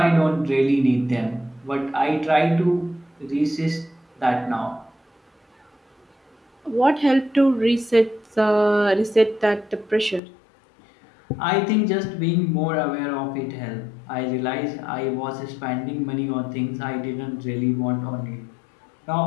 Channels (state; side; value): drops out; right; at 10.2 s